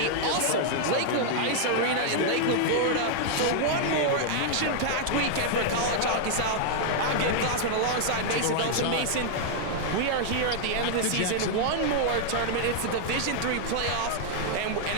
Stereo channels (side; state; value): both; different; correlation -0.01